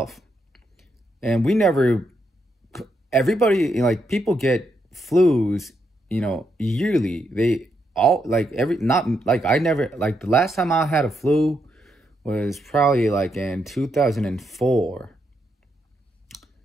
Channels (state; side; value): normal; both; correlation 0.80